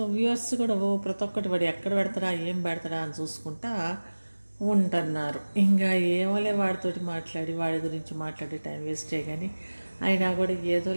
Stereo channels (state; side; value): inverted; both; correlation -1.00